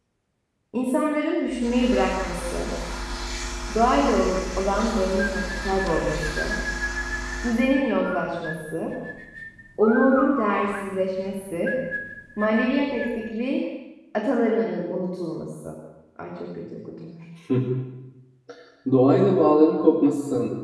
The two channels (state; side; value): identical; both; correlation 1.00